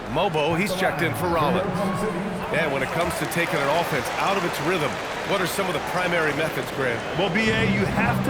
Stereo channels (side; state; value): both; identical; correlation 1.00